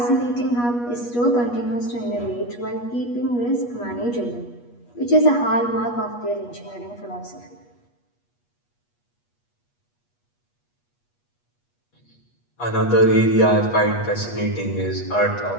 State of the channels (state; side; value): late; right; 8.3 ms